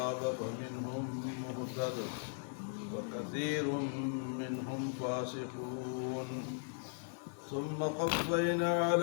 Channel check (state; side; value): silent; right; digital silence